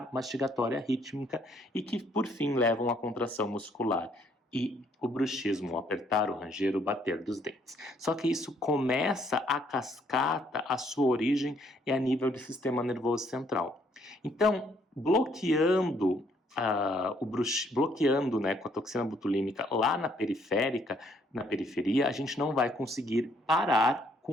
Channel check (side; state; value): both; normal; correlation 0.67